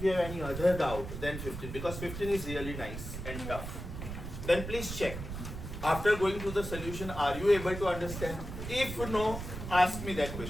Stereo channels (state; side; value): noise; right; rumble, 8 dB below the sound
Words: you have any other doubt, then 15, because 15 is really nice and tough. Then please check. After going through the solution, are you able to understand? If no, ask me that